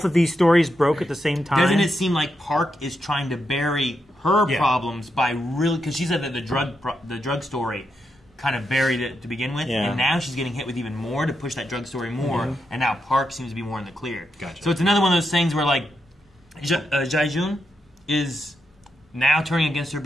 of these stories broke at the same time? Doesn't it seem like Park is trying to bury her problems by really... Because she said that the drug story kind of buried it to begin with, and now she's getting hit with even more to push that drug story more, and now Park seems to be more in the clear. Gotcha. So it's another one of those things where, like, Jaejun is now turning against her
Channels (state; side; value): normal; both; correlation 0.84